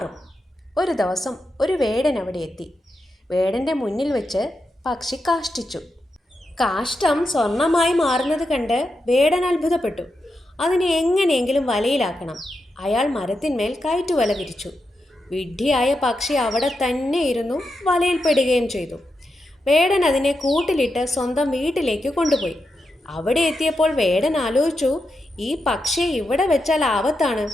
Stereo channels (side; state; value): both; normal; correlation 0.86